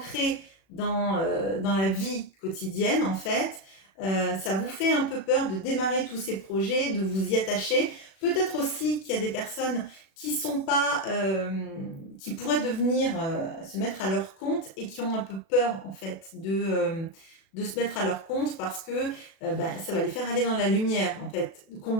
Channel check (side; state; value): right; late; 36 ms